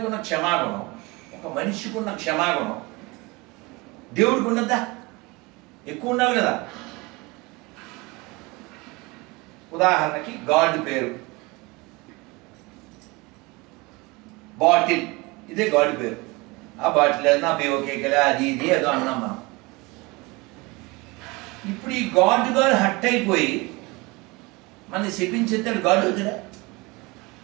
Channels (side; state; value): left; quieter; 24.8 dB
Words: ఉన్న క్షమాగుణం, ఒక మనిషికి ఉన్న క్షమాగుణం దేవుడికి ఉన్నదా? ఎక్కువ ఉండాలి కదా. ఉదాహరణకి గాడ్ పేరు బాటిల్, ఇదే గాడ్ పేరు. ఆ బాటిల్ నా బేవకేకలే అది ఇది ఏదో అన్నాం మనం. ఇప్పుడు ఈ గాడ్ హట్ అయిపోయి మన శపించేస్తాడు. గాడ్ అవుతాడా?